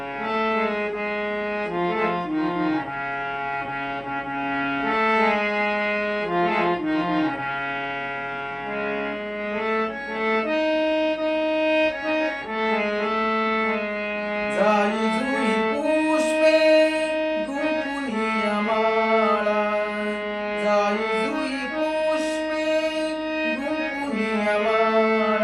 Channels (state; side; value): noise; right; hum, 26 dB below the sound